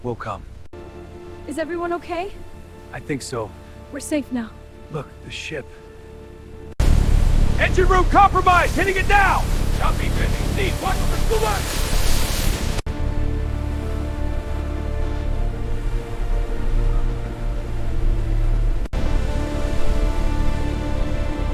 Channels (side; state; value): both; identical; correlation 1.00